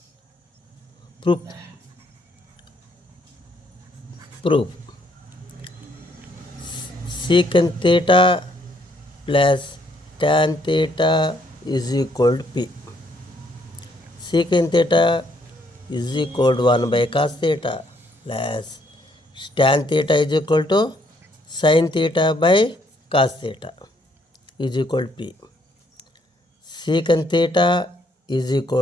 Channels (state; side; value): normal; both; correlation 0.69